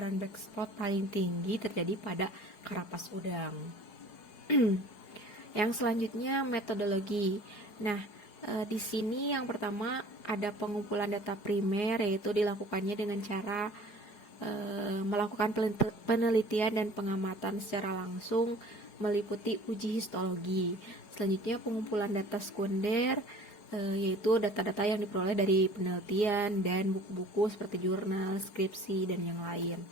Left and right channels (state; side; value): late; right; 4.8 ms